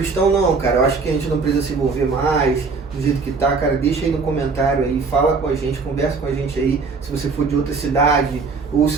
não, cara, eu acho que a gente não precisa se envolver mais do jeito que tá, cara, deixa aí no comentário aí, fala com a gente, conversa com a gente aí, se você for de outra cidade, ou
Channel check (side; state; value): left; quieter; 4.5 dB